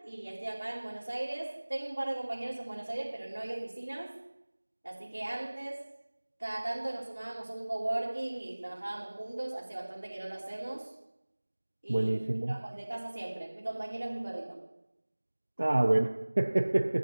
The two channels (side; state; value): both; inverted; correlation -1.00